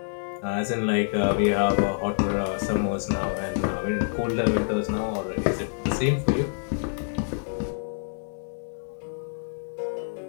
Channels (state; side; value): silent; right; 57 dB below the other